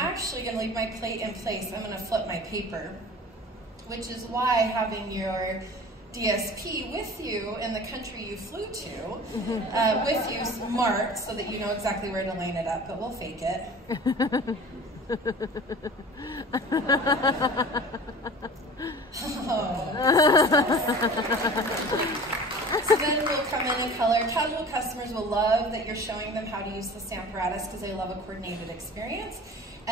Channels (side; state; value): both; normal; correlation 0.40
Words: going to leave my plate in place. I'm going to flip my paper, which is why having your DSP with you in the country you flew to, with you marked so that you know exactly where to line it up, but we'll fake it. So then we'll come in and color. Casual customers will love that you're showing them how to use the Stamparatus because they love a coordinated experience.